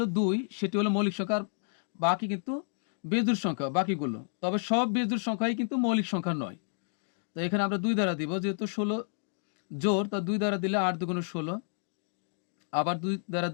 2, সেটি হলো মৌলিক সংখ্যা, আর বাকি কিন্তু বেজোড় সংখ্যা বাকিগুলো। তবে সব বেজোড় সংখ্যাই কিন্তু মৌলিক সংখ্যা নয়। তো এখানে আমরা 2 দ্বারা দিব, যেহেতু 16 জোড়, তা 2 দ্বারা দিলে 8 দুগুণে 16, আবার 2 দ্বারা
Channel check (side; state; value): right; silent; digital silence